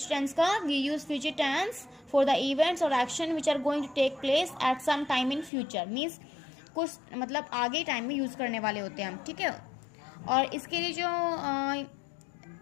टेंस का. We use future tense for the events और action which are going to take place at some time in future. Means कुछ मतलब आगे टाइम में यूज करने वाले होते हैं हम. ठीक है, और इसके लिए जो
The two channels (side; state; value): right; drops out; at 5.5 s